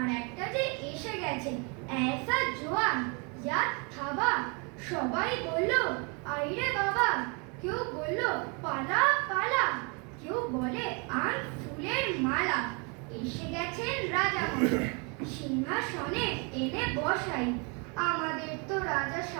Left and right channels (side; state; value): left; quieter; 33.3 dB